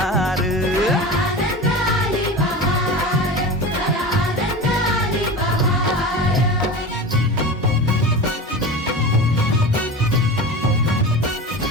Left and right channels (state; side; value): normal; both; correlation 0.30